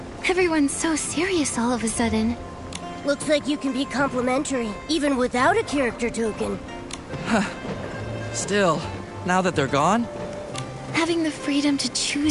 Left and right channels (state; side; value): identical; both; correlation 1.00